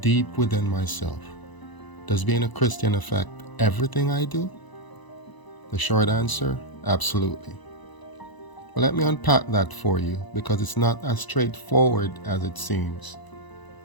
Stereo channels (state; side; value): late; right; 1.0 ms